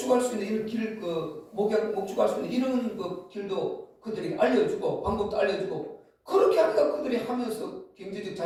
수 있는 이런 길 목축할 수 있는 이런 그 길도 그들에게 알려주고 방법도 알려주고 그렇게 하니까 그들이 하면서 경제적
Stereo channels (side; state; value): both; identical; correlation 1.00